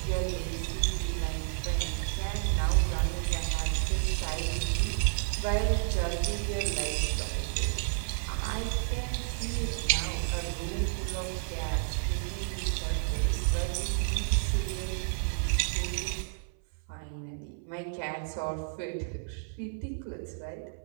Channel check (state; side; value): silent; left; 57 dB below the other